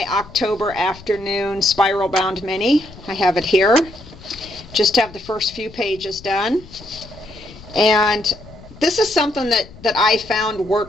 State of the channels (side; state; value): left; noise; rumble, 19 dB below the sound